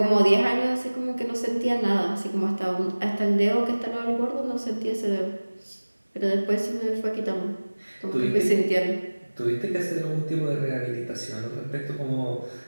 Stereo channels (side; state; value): both; inverted; correlation -1.00